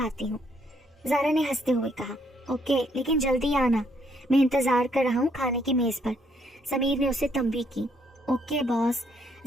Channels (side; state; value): both; normal; correlation 0.70